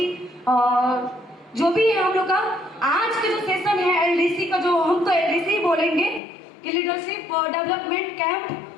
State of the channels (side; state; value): right; drops out; at 6.2 s